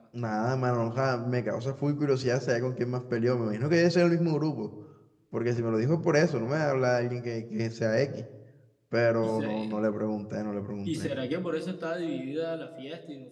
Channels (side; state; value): both; identical; correlation 1.00